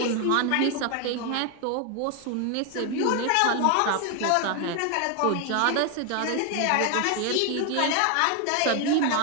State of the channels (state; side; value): different; both; correlation 0.01